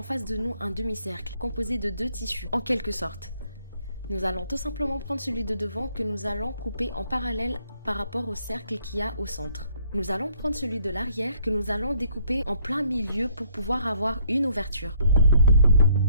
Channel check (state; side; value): inverted; both; correlation -0.65